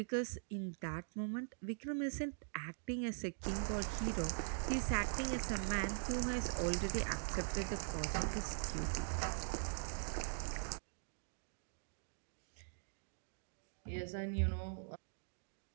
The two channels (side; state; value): left; silent; digital silence